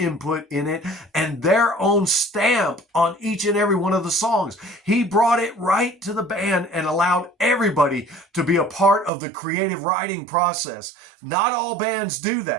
in it and their own stamp on each and every one of the songs? He brought it right to the band and allowed everybody to be a part of the creative writing process. Not all bands do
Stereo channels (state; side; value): drops out; left; at 9.1 s